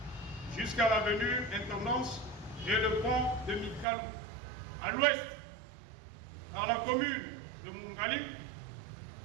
jusqu'à l'avenue Intendance et le pont de Mikalou. À l'ouest par la commune de Mungali,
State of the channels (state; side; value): drops out; left; at 3.9 s